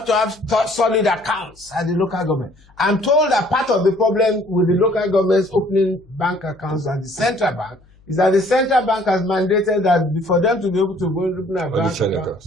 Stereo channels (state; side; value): noise; left; hum, 29 dB below the sound